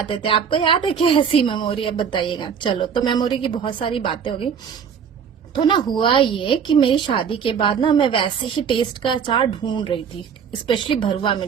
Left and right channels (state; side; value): quieter; left; 7.1 dB